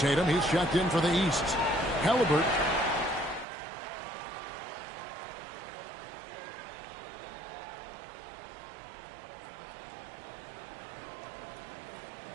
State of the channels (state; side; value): drops out; left; at 3.5 s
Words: he's checked in for the East. Halliburton.